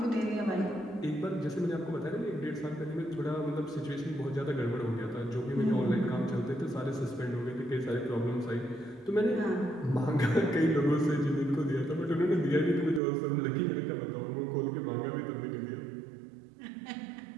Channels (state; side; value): drops out; left; at 13.0 s